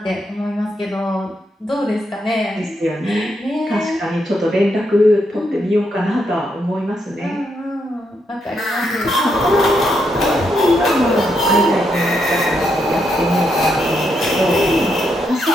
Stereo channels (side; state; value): both; normal; correlation 0.79